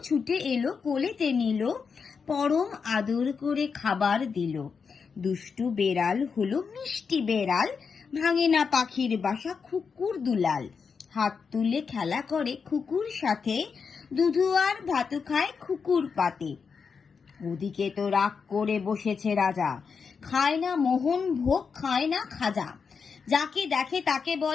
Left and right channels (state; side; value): quieter; right; 5.7 dB